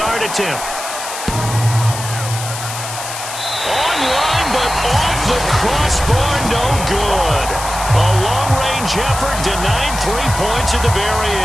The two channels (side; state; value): left; noise; hiss, 8 dB below the sound